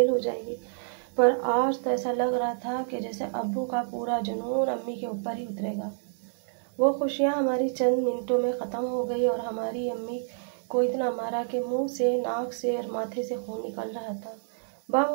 हो जाएगी। पर आज तो ऐसा लग रहा था कि जैसे अब्बू का पूरा जुनून अम्मी के ऊपर ही उतरेगा। वो खुशियाँ हमारी चंद मिनटों में ख़त्म हो गई और हमारी अम्मी को इतना मारा कि मुंह से, नाक से और माथे से खून निकल रहा था।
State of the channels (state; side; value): silent; left; digital silence